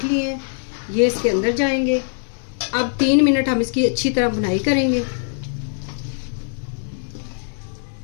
लिए हैं। ये इसके अंदर जाएंगे। अब 3 मिनट हम इसकी अच्छी तरह बुनाई करेंगे।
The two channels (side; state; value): right; silent; digital silence